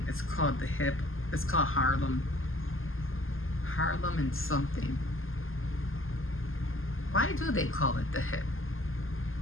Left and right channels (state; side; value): late; right; 0.59 ms